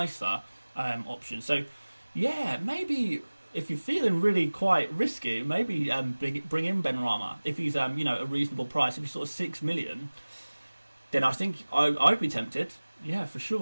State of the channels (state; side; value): inverted; both; correlation -1.00